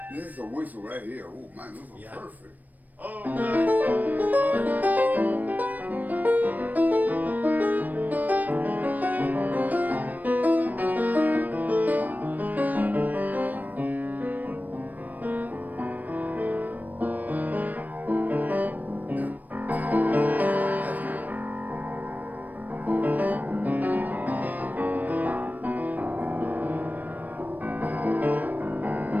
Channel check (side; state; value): left; late; 0.083 ms